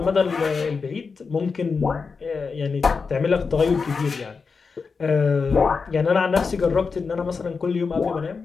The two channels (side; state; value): right; quieter; 5.0 dB